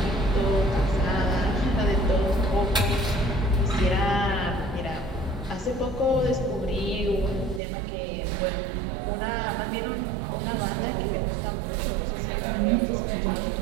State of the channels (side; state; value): left; drops out; at 7.6 s